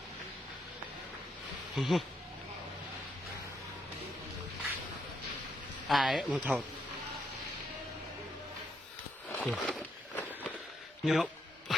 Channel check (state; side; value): normal; both; correlation 0.77